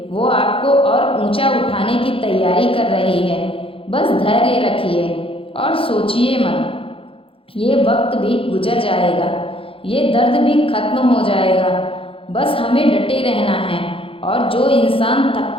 वो आपको और ऊंचा उठाने की तैयारी कर रही है। बस धैर्य रखिए और सोचिए मत, ये वक्त भी गुजर जाएगा, ये दर्द भी खत्म हो जाएगा। बस हमें डटे रहना है और जो इंसान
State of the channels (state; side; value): late; right; 0.26 ms